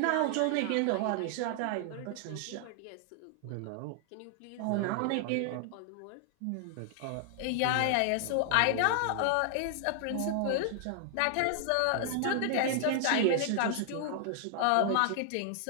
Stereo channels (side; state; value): both; different; correlation 0.00